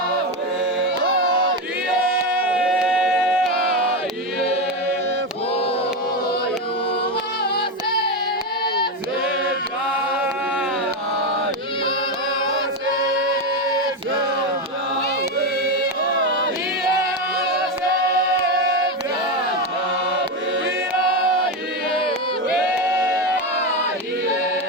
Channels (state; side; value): normal; both; correlation 0.12